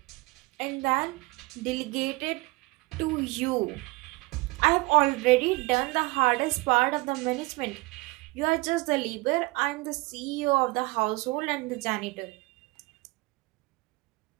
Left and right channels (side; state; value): left; quieter; 24.0 dB